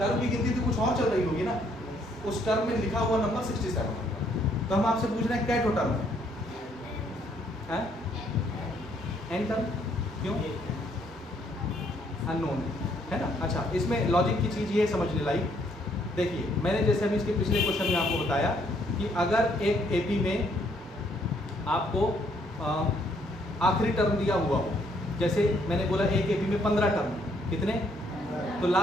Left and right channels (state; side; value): normal; both; correlation 0.68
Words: की गिनती तो कुछ और चल रही होगी ना, उस टर्म में लिखा हुआ नंबर 67 होगा। तो हम आपसे पूछ रहे हैं क्या टर्म है, एन टर्म, क्यों, अननोन है ना। अच्छा, इसमें लॉजिक की चीज़ ये समझने लायक, देखिए मैंने जैसे अभी इसके पिछले क्वेश्चन में आपको बताया कि अगर एक एपी में आपको आखिरी टर्म दिया हुआ हो, जैसे मैंने बोला एक एपी में 15 टर्म, कितने, तो